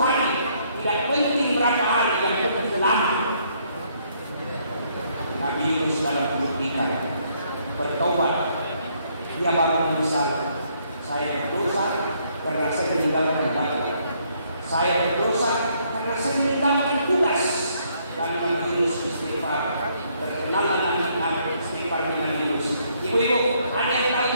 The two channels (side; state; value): both; inverted; correlation -0.69